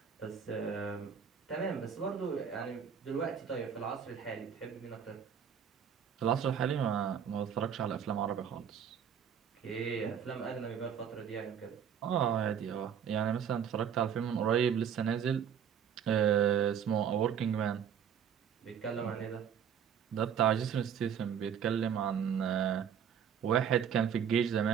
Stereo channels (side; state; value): left; quieter; 8.1 dB